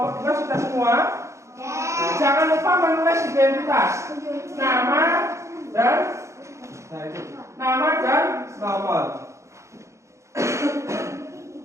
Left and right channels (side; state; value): left; late; 0.14 ms